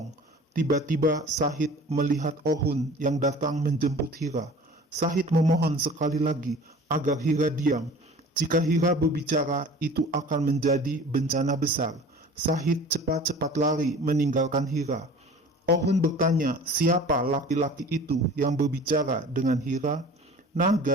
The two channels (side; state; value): both; normal; correlation 0.43